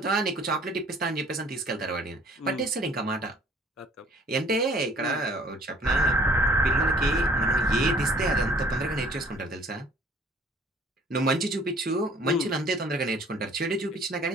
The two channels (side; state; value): both; normal; correlation 0.55